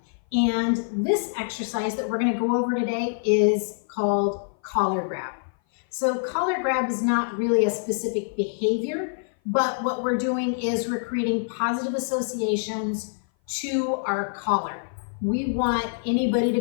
And this exercise that we're going to go over today is called collar grab. So collar grab is not really a specific behavior, but what we're doing is we're creating positive associations to our collar. We want anybody to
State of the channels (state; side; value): silent; right; 57 dB below the other